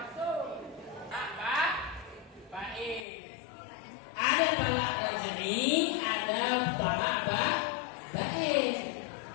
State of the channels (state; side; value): drops out; right; at 3.1 s